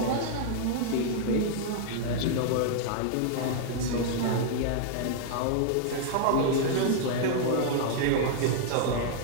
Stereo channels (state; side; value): different; both; correlation -0.01